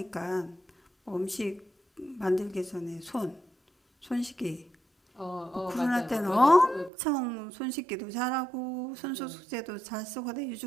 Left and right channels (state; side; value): drops out; left; at 6.9 s